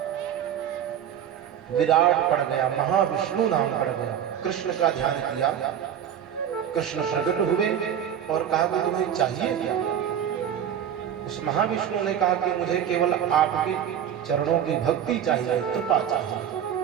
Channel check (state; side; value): quieter; left; 9.4 dB